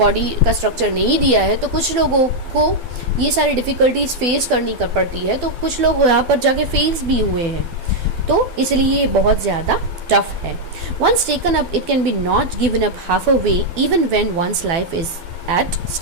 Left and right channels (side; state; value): left; late; 12 ms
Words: का स्ट्रक्चर नहीं दिया है, तो कुछ लोगों को ये सारी डिफ़िकल्टीज फेस करनी पड़ती है। तो कुछ लोग यहाँ पर जाके फेस भी हुए हैं, तो इसलिए ये बहुत ज़्यादा टफ है। Once taken up it can be not given up half a way even when one's life is at